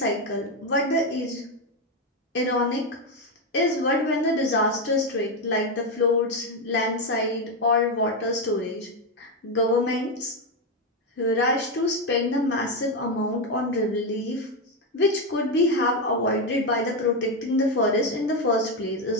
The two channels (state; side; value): normal; both; correlation 0.08